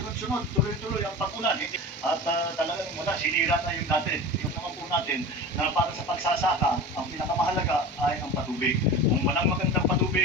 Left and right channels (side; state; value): both; normal; correlation 0.33